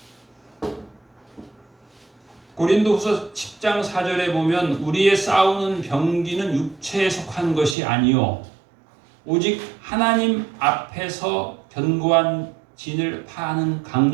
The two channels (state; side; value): drops out; left; at 7.8 s